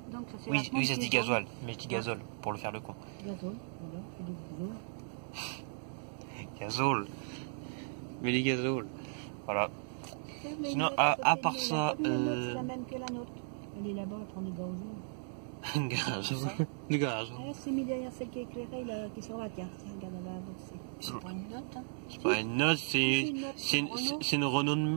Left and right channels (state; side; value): silent; left; digital silence